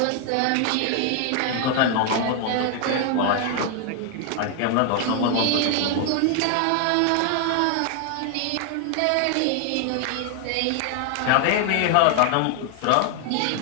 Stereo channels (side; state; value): both; different; correlation 0.00